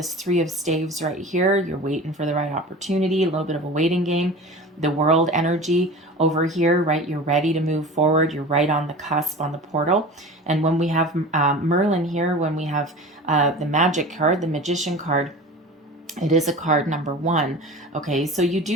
Three of Staves right here, you're waiting for the right opportunity, a little bit of a waiting game. The world energy over here, right? You're ready to move forward, you're right on the cusp, on the portal. And when we have Merlin here, when we have the magic card, the Magician card, it is a card number one. Okay, so you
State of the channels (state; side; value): normal; both; correlation 0.36